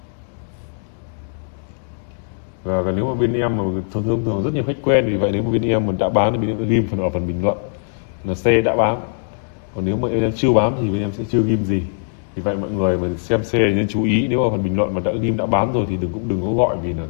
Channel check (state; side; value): silent; right; digital silence